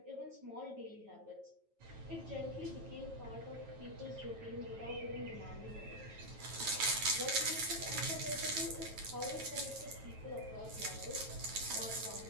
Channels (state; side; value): late; left; 9.2 ms